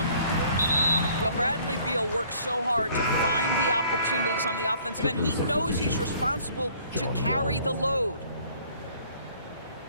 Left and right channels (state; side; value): inverted; both; correlation -0.57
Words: Well, Bradley Beal works so hard to find the opportunities on the offensive end. He knows he's responsible to carry the load.